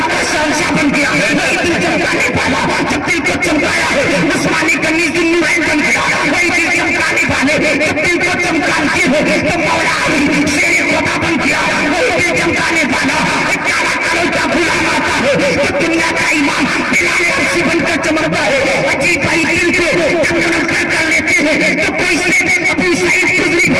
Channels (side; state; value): both; identical; correlation 1.00